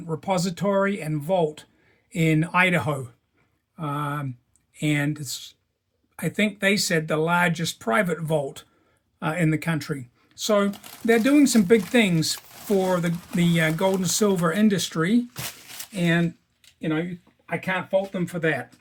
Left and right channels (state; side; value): identical; both; correlation 1.00